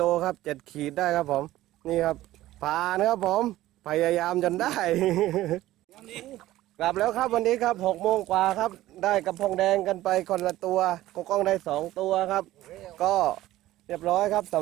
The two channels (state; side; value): quieter; left; 15.5 dB